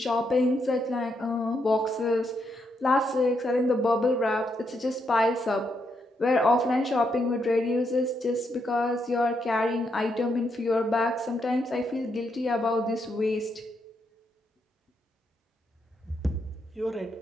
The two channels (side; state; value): both; normal; correlation 0.79